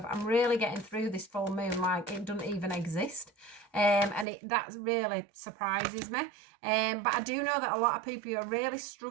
I'm really getting through this full moon like it doesn't even exist. And that really surprises me. But I do know that a lot of people are really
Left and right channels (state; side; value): drops out; left; at 4.2 s